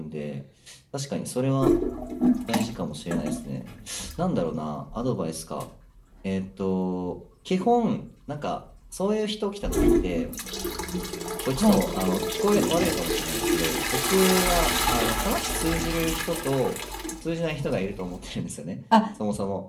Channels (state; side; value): identical; both; correlation 1.00